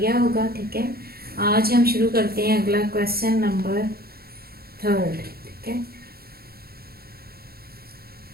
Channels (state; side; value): late; left; 0.45 ms